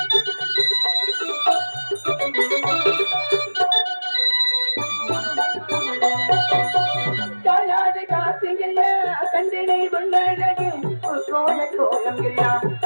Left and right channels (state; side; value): inverted; both; correlation -1.00